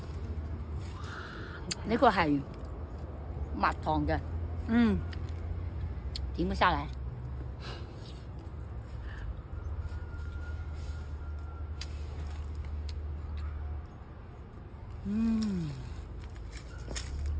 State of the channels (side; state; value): both; identical; correlation 1.00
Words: 呢個係蜜糖嘅，點唔下來？